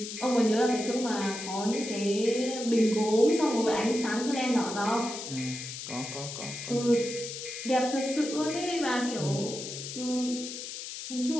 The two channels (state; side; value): noise; left; hiss, 8 dB below the sound